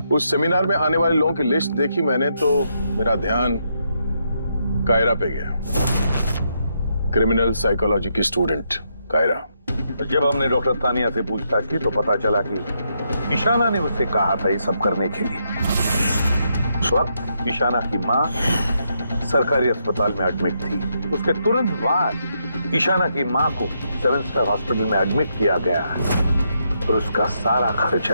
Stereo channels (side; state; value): both; inverted; correlation -0.79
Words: उस सेमिनार में आने वाले लोगों की लिस्ट देखी मैंने तो मेरा ध्यान कायरा पे गया। क्रिमिनल साइकोलॉजी की स्टूडेंट कायरा। जब हमने डॉक्टर तानिया से पूछताछ की तो पता चला कि ईशाना ने उससे कहा था ये सब करने के लिए। उस वक्त ईशाना की मां सरकारी अस्पताल में एडमिट थी। उसके तुरंत बाद ईशाना की मां को 7 स्टार हॉस्पिटल में एडमिट किया गया और उसका सारा